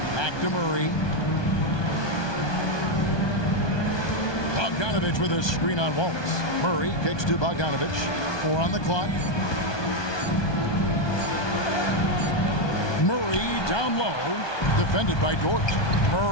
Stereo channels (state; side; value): late; right; 1.2 ms